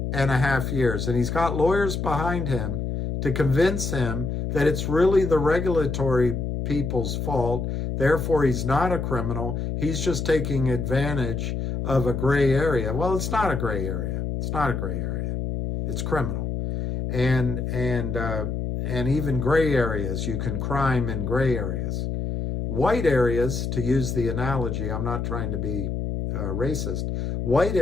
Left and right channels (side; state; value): left; noise; hum, 2 dB below the sound